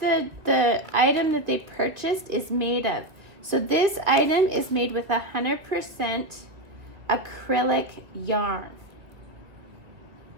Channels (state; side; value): late; left; 2.5 ms